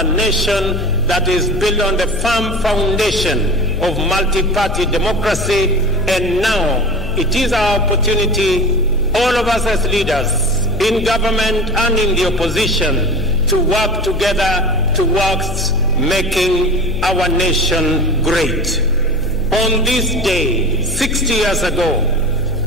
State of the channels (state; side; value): noise; left; hum, 8 dB below the sound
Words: nation that is built on the firm foundation of multi-party democracy. And now it is our opportunity, all of us as leaders in government and in the opposition, to work together towards making our nation great. On this day, 60 years ago,